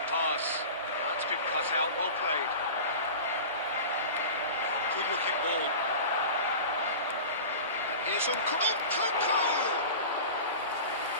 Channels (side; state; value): both; inverted; correlation -0.34